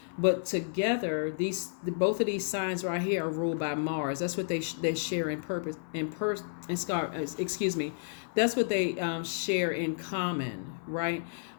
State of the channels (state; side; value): silent; right; 55 dB below the other